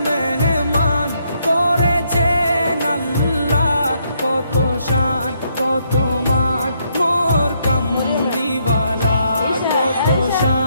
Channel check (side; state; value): both; inverted; correlation -0.74